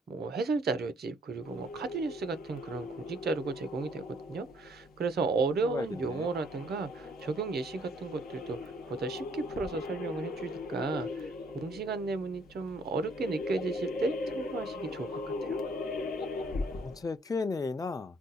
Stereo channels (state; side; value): normal; both; correlation 0.64